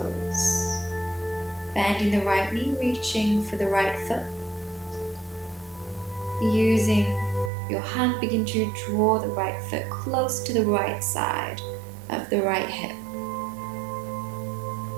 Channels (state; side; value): drops out; left; at 7.5 s